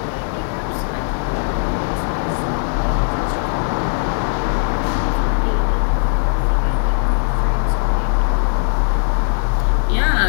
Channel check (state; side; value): silent; right; 67 dB below the other